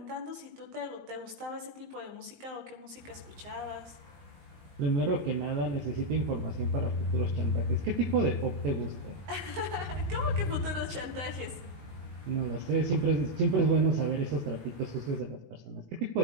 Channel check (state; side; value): late; left; 19 ms